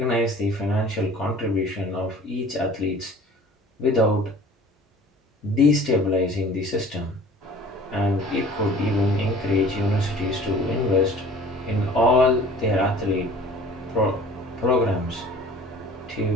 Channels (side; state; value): both; normal; correlation 0.47